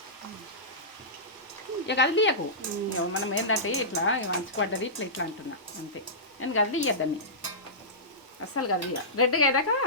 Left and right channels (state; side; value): normal; both; correlation -0.18